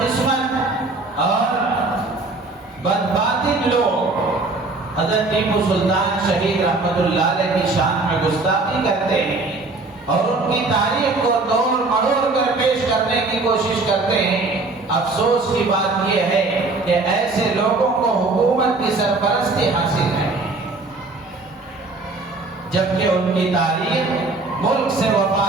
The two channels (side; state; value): left; quieter; 3.4 dB